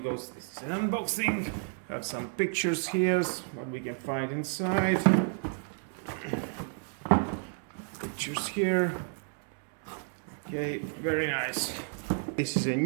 this is an unboxing. We have some pictures here, what we can find inside. Pictures here. Okay, very nice. This is a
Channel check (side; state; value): left; silent; 55 dB below the other